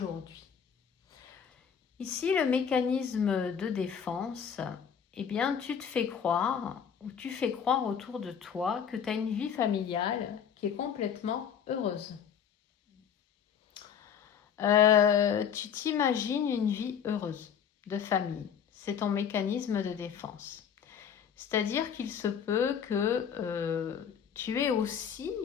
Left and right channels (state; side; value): quieter; right; 7.9 dB